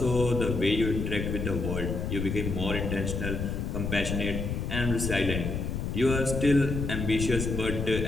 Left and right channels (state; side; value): noise; left; rumble, 3 dB below the sound